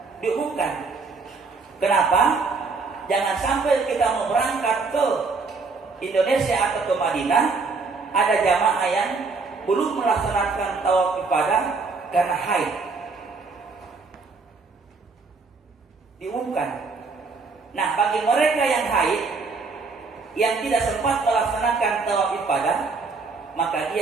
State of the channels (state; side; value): quieter; left; 4.3 dB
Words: diumumkan. Kenapa? Jangan sampai kita mau berangkat ke Indonesia atau ke Madinah, ada jamaah yang belum melaksanakan tawaf ibadah karena haid. Diumumkan. Nah, bagi mereka yang haid, yang tidak sempat melaksanakan tawaf ibadah, maka